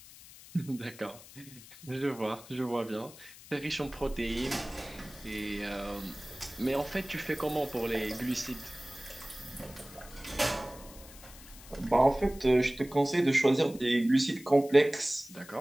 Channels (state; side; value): noise; left; hiss, 19 dB below the sound